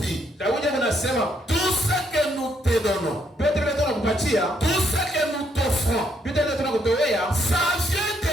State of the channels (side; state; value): both; normal; correlation 0.73